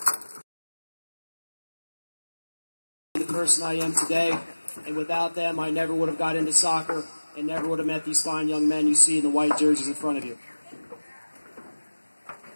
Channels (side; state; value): both; inverted; correlation -1.00